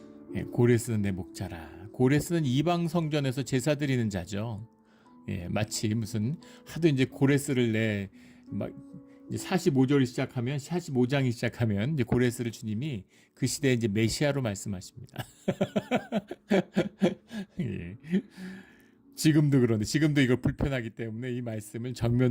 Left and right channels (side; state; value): both; identical; correlation 1.00